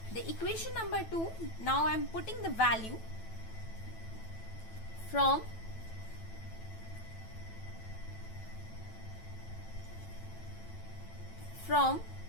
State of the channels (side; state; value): right; late; 9.1 ms